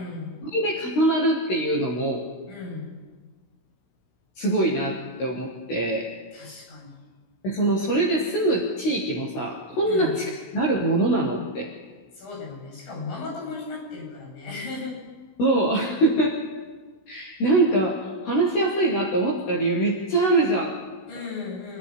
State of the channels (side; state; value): right; late; 16 ms